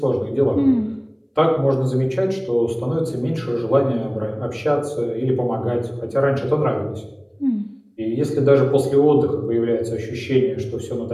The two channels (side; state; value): both; identical; correlation 1.00